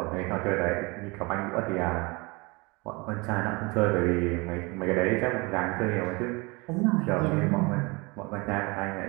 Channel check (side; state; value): left; quieter; 26.6 dB